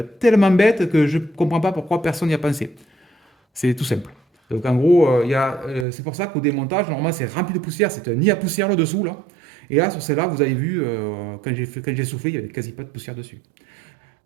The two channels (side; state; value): left; drops out; at 5.9 s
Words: tellement bête que je ne comprends pas pourquoi personne n'y a pensé. C'est tout simple. Donc en gros, c'est pour ça qu'au démontage, normalement c'est rempli de poussière, c'est un nid à poussière là dessous là. Et là sur celle-là, vous avez vu, quand j'ai soufflé, il n'y avait quasi pas de poussière dessus.